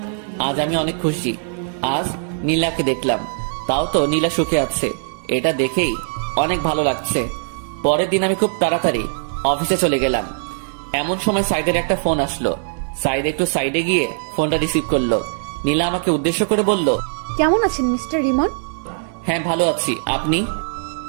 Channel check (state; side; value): silent; left; 57 dB below the other